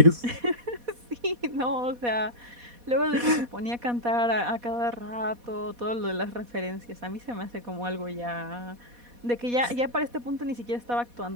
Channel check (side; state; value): left; late; 4.2 ms